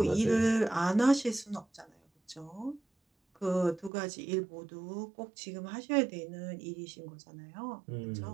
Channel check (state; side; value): drops out; left; at 3.9 s